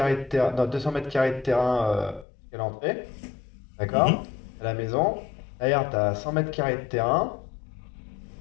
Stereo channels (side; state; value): right; drops out; at 2.2 s